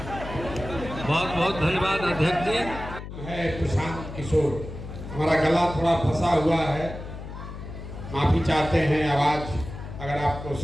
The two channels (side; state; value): left; noise; hum, 10 dB below the sound